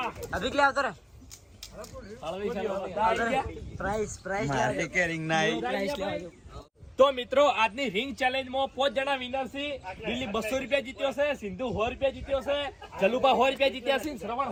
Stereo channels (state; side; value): identical; both; correlation 1.00